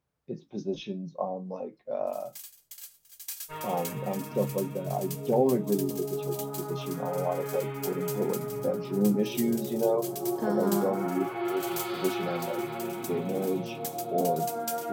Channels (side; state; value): both; identical; correlation 1.00